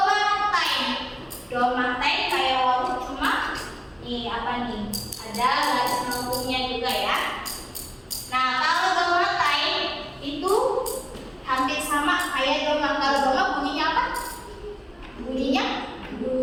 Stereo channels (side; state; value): both; identical; correlation 1.00